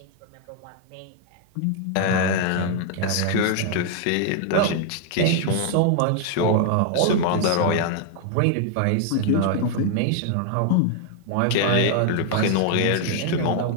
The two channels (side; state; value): both; different; correlation 0.00